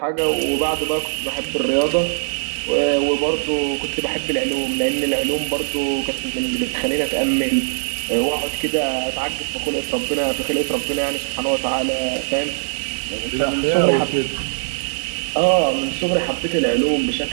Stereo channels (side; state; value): left; silent; digital silence